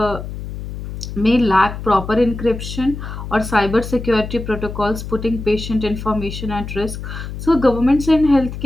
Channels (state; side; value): noise; left; hum, 8 dB below the sound